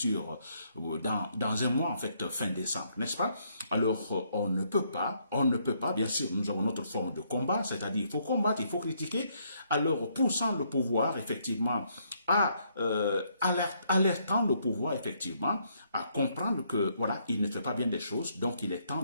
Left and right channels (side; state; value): both; inverted; correlation -0.71